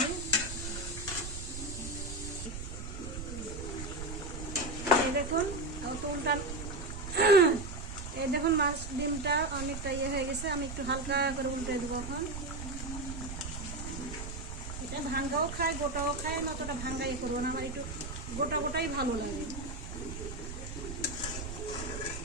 এই দেখুন উল্টা, এই দেখুন মাছ ডিমটা অনেকটা ইয়ে হয়ে গেছে। আমি একটু হালকা করে উল্টে দেবো এখন। এটা ভাঙ্গাও খায়, গোটাও খায়, আমি অতটা ভাঙ্গা ইয়ে করবো না। আমার একটু গোটা গোটাই ভালো লাগে।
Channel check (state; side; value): noise; right; rumble, 7 dB below the sound